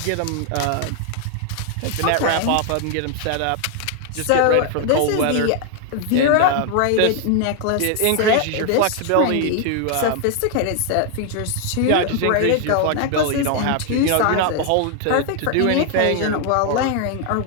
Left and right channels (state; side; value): different; both; correlation 0.00